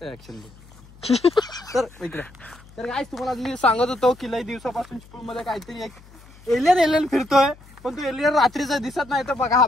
ऍक्शन तर इकडे तर काय तुम्हाला मी सांगत होतो की लई दिवसापासून स्कूल मध्ये काहीतरी एक एलियन फिरतोय पण तो एलियन रात्रीचा दिसत नाही तर बघा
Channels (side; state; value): left; noise; hum, 23 dB below the sound